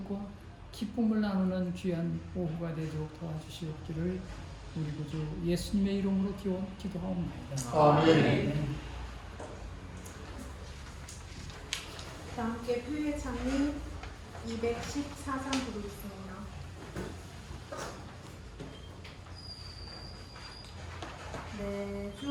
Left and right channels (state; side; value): identical; both; correlation 1.00